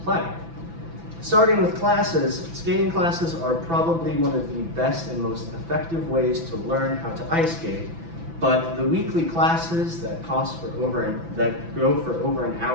play. Starting with classes, skating classes are probably one of the best and most effective ways to learn how to ice skate. But the weekly classes that go for over an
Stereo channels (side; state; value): left; late; 6.0 ms